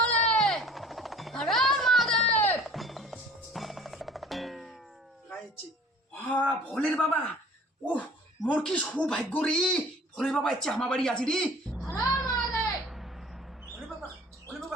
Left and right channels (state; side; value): normal; both; correlation 0.48